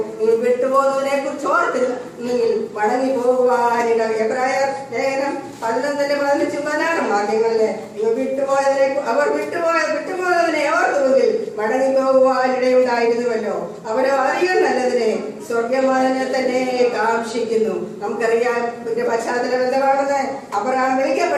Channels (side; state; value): both; identical; correlation 1.00